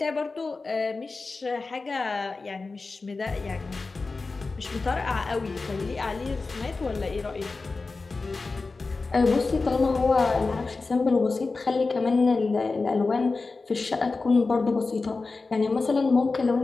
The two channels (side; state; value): right; quieter; 3.9 dB